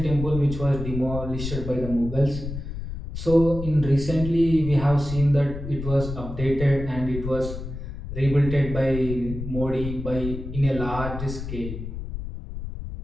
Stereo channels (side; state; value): left; noise; rumble, 7 dB below the sound